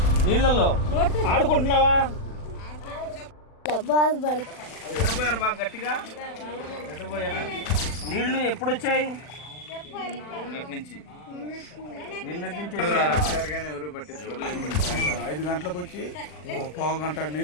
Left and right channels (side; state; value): right; late; 40 ms